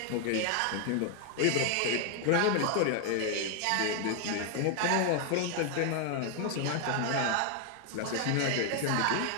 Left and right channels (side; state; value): both; different; correlation 0.00